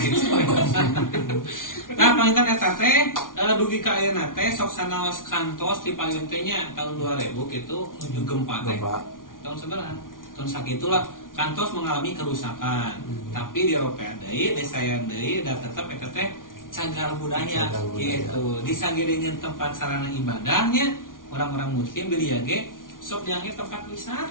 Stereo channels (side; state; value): right; late; 0.89 ms